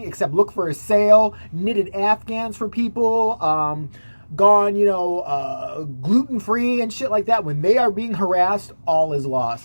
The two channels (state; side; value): inverted; both; correlation -1.00